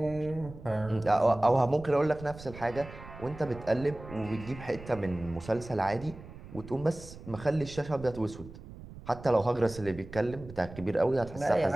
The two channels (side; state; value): right; noise; rumble, 15 dB below the sound